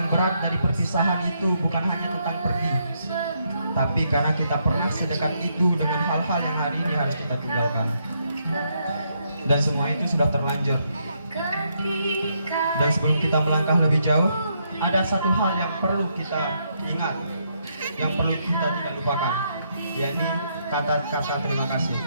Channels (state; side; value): inverted; both; correlation -0.76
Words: berat dari perpisahan itu bukan hanya tentang pergi, tapi karena kita pernah sedekat itu dengan hal-hal yang hari ini harus kita tinggalkan. Dan semua itu sudah terlanjur. Dan sebelum kita melangkah lebih jauh, ada satu hal yang perlu kita ingat, yang perlu kita tidak lupakan, yakni kata-kata terima kasih.